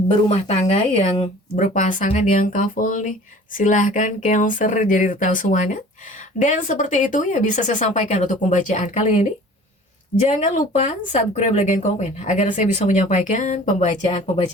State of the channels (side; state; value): both; normal; correlation 0.46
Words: tangga, yang berpasangan, yang couple nih, silahkan Cancer jadi tahu semuanya. Dan seperti itu ya bisa saya sampaikan untuk pembacaan kali ini. Jangan lupa subscribe, like, dan komen agar saya bisa menyampaikan